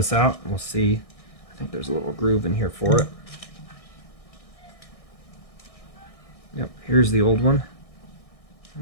out and we'll see. I think there's a little groove in here for it. Yep, here's the old one.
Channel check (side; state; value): right; late; 1.6 ms